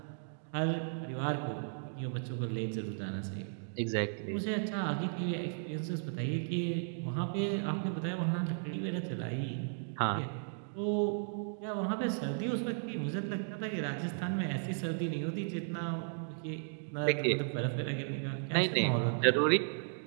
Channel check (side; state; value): left; silent; digital silence